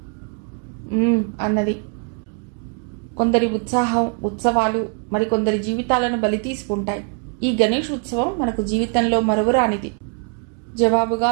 అన్నది. కొందరి ఉత్సాహం, ఉత్సవాలు మరికొందరి జీవితాలను బలి తీసుకుంటాయి. ఈ గణేష్ ఉత్సవం మనకు జీవితంలో మరువరానిది. జవాబుగా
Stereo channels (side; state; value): left; quieter; 38.8 dB